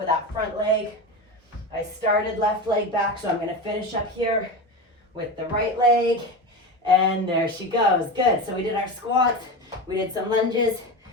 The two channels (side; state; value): both; normal; correlation 0.23